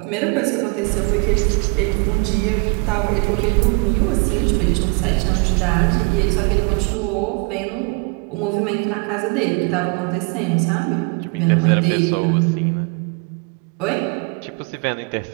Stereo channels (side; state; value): left; quieter; 32.5 dB